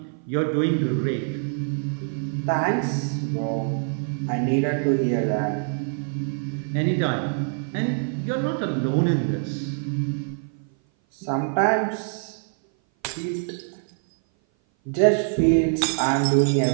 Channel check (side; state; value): left; silent; 57 dB below the other